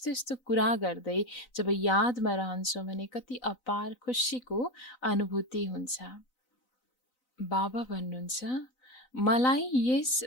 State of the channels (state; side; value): late; right; 4.0 ms